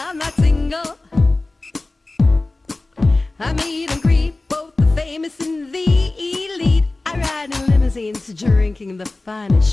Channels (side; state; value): right; quieter; 3.1 dB